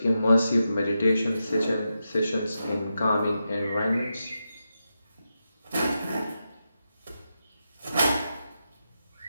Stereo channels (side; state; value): both; inverted; correlation -0.88